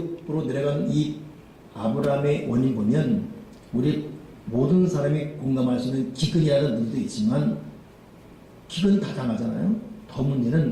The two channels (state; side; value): identical; both; correlation 1.00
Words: 내려간 이 아브라함의 원인 보면 우리 모든 사람이 공감할 수 있는 기근이라는 의미도 있지만 기근 다 당하잖아요. 더